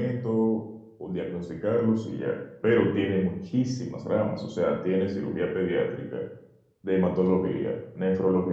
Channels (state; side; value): identical; both; correlation 1.00